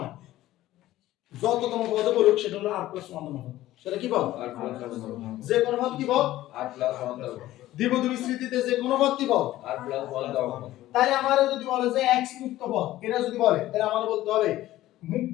যততম পদ বলুক সেটা হলো r + 1 তম পদ। সেটা কি পদ? r + 1 তম পদ। যে কোন পদ কি পদ? r + 1 তম পদ। দ্বিপদী বিস্তৃতিতে যে কোন পদ কি পদ? r + 1 তম পদ। তাহলে আমারে যদি বলে যে x মুক্ত পদ, এটা যদি বলে তাহলে আমাদের বলতে হবে মুক্ত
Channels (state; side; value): quieter; right; 15.2 dB